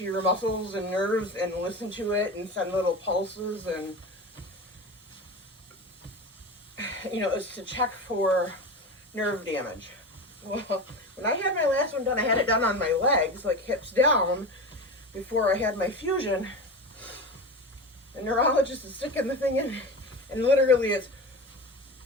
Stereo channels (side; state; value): both; normal; correlation 0.27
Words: your muscles and nerves and listen to it and send little pulses, and it's to check for nerve damage. Well, when I had my last one done, I had it done on my legs, like hips down, before I had my fusion. The neurologist is sticking the thing in, and literally it's,